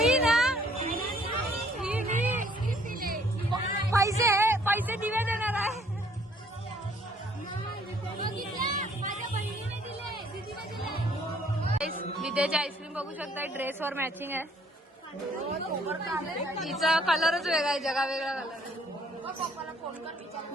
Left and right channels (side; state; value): both; normal; correlation 0.62